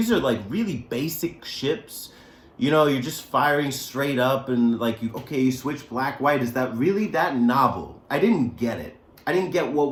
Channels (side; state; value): both; identical; correlation 1.00